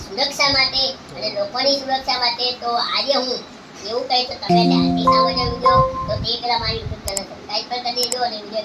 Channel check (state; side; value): identical; both; correlation 1.00